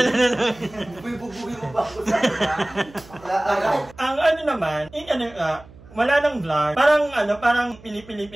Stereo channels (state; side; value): noise; right; hum, 22 dB below the sound